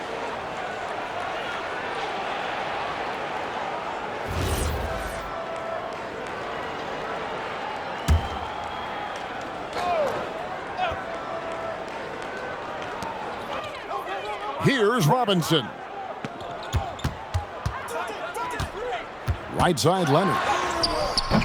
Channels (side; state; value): both; identical; correlation 1.00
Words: Here's Robinson. Right side, Leonard.